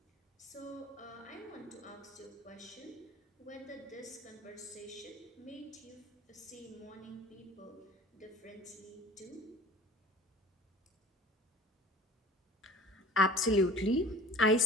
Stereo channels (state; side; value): normal; both; correlation 0.45